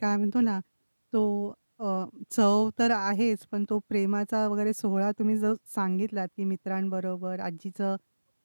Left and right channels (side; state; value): both; inverted; correlation -1.00